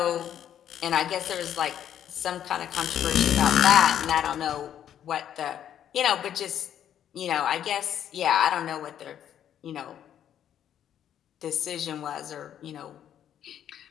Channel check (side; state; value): right; quieter; 10.1 dB